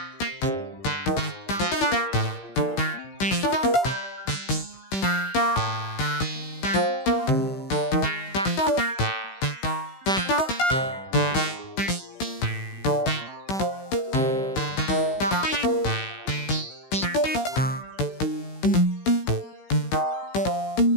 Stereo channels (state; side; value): late; right; 16 ms